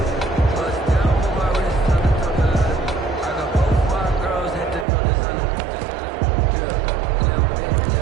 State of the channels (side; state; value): left; drops out; at 4.9 s